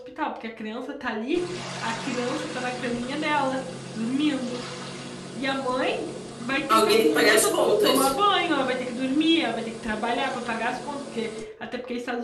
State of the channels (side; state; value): both; identical; correlation 1.00